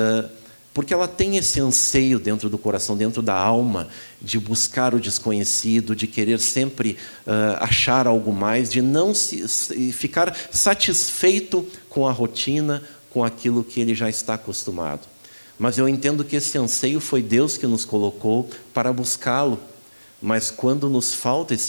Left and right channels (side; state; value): both; inverted; correlation -1.00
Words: porque ela tem esse anseio dentro do coração, dentro da alma, de buscar o desconhecido, de querer sempre achar algo mais, de não ficar satisfeito com a rotina, com aquilo que ele já está acostumado. Mas eu entendo que esse anseio foi Deus que nos colocou para buscá-lo. Mas quando nos falta